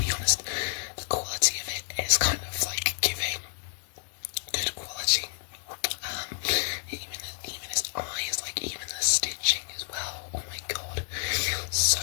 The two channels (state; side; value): silent; right; digital silence